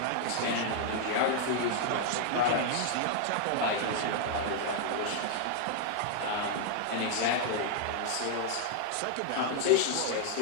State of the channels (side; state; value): both; different; correlation -0.01